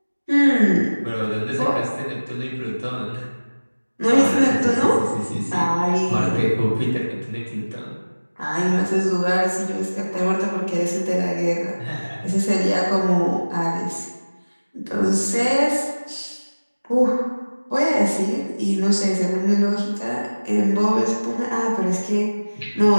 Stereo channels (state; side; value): inverted; both; correlation -1.00